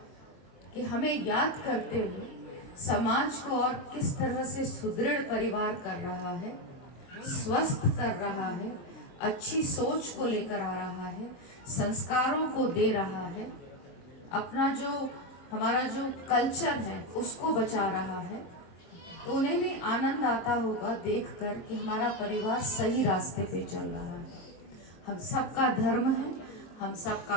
कि हमें याद करते हुए समाज को और किस तरह से सुदृढ़ परिवार कर रहा है, स्वस्थ कर रहा है, अच्छी सोच को लेकर आ रहा है, संस्कारों को दे रहा है, अपना जो हमारा जो कल्चर है उसको बचा रहा है। तो उन्हें भी आनंद आता होगा देखकर कि हमारा परिवार सही रास्ते पे चल रहा है। हम सबका धर्म है, हम सबका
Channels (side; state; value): right; late; 23 ms